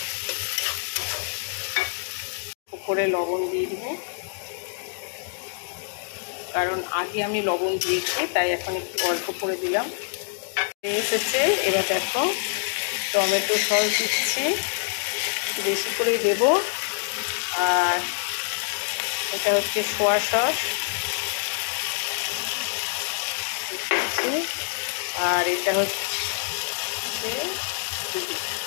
উপরে লবণ দিয়ে দেবো, কারণ আগে আমি লবণ দিয়েছি, তাই এখন একটু অল্প করে দিলাম। এসেছে, এবার দেখো টমেটো সস দিচ্ছি, বেশি করেই দেবো। আর এটা হচ্ছে সোয়া সস, আর এটা হচ্ছে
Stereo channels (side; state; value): right; silent; digital silence